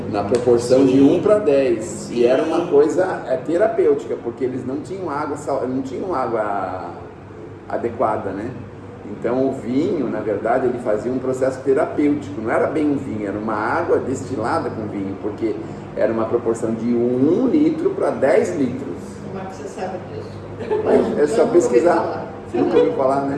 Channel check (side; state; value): both; identical; correlation 1.00